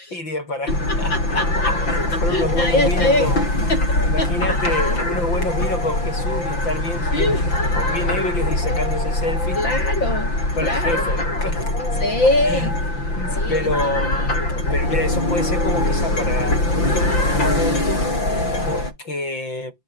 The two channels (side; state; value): right; late; 5.8 ms